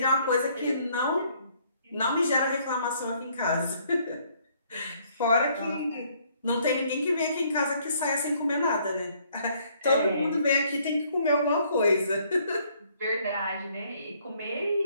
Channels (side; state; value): both; inverted; correlation -0.65